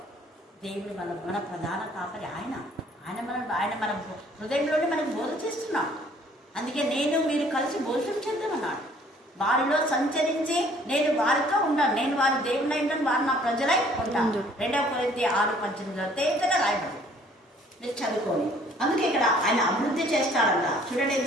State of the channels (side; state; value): both; normal; correlation 0.58